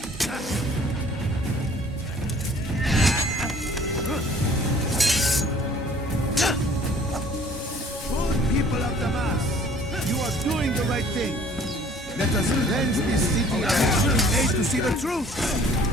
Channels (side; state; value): both; normal; correlation 0.54